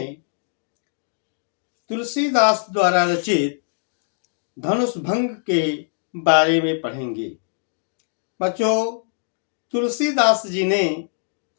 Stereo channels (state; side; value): silent; right; digital silence